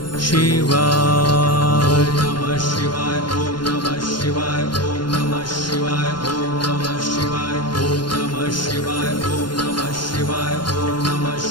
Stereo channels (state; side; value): late; right; 0.72 ms